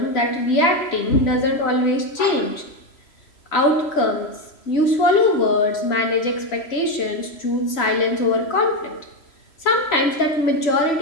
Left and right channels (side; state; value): right; late; 3.0 ms